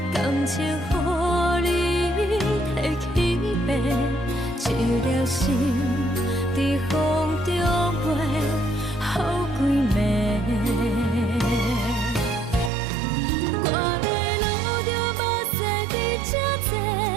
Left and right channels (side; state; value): left; drops out; at 12.7 s